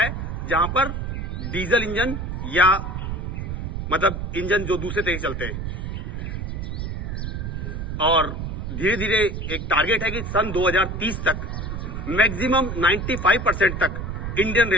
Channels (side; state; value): right; noise; rumble, 4 dB below the sound